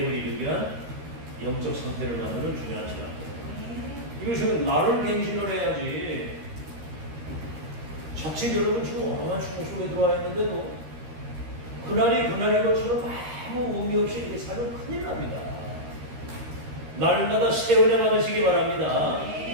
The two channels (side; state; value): left; late; 13 ms